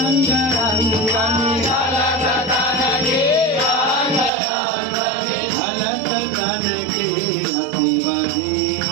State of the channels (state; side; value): drops out; left; at 4.3 s